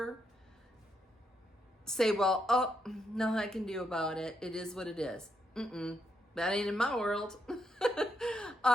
say, well, oh, nothing I can do about it. It is what it is. That ain't in my world.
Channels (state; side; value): normal; both; correlation 0.79